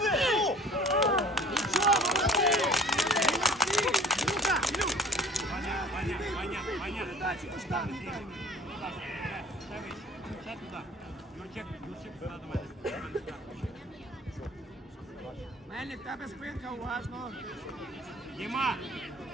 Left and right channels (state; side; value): normal; both; correlation 0.47